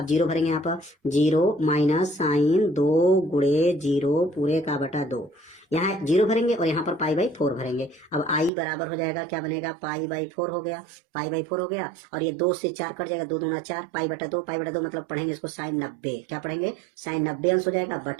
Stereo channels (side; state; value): left; drops out; at 8.5 s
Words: 0 भरेंगे, यहाँ पर 0 माइनस साइन 2 गुणे 0 पूरे का बटा 2। यहाँ 0 भरेंगे और यहाँ पर पाई/4 भरेंगे। अब i बराबर हो जाएगा, क्या बनेगा, पाई/4 हो गया, पाई/4 हो गया और ये 2 से 4 कट जाएगा, 2 दूना 4, पाई/2, पाई/2 मतलब पढ़ेंगे इसको साइन 90। क्या पढ़ेंगे, साइन 90 अंश हो जाएगा,